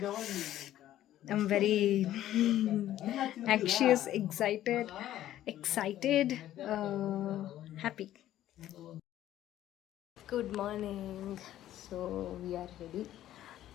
I'm very anxious, excited, happy. Good morning. So we are ready.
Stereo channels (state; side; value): quieter; right; 12.9 dB